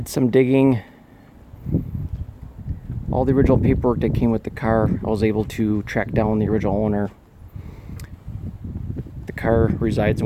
some digging. All the original paperwork that came with the car, I was able to track down the original owner. The car resides in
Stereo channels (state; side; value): identical; both; correlation 1.00